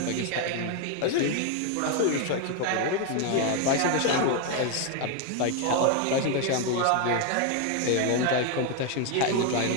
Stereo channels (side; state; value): both; different; correlation 0.01